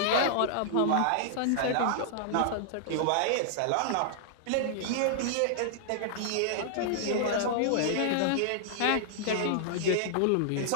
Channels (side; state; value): both; different; correlation -0.01